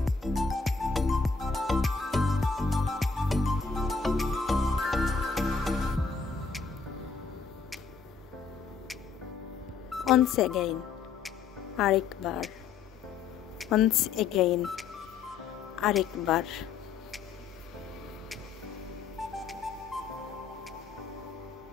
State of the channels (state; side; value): quieter; right; 5.3 dB